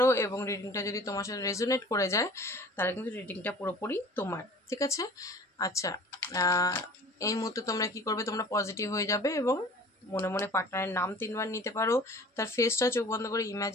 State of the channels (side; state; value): both; normal; correlation 0.45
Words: এবং রিডিংটা যদি তোমার সাথে রেজোনেট করে যায়, তাহলে কিন্তু রিডিংটা পুরোপুরি তোমার, ঠিক আছে? আচ্ছা, এই মুহূর্তে তোমরা কি করবে, তোমরা পজিটিভ হয়ে যাবে এবং মনে মনে পার্টনারের নাম 3বার নিতে পারো, তার ফেসটা চোখ বন্ধ করে